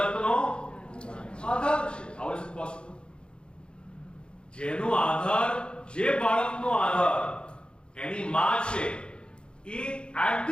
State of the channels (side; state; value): right; late; 0.054 ms